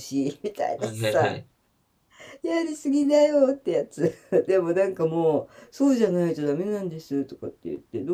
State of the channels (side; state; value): both; identical; correlation 1.00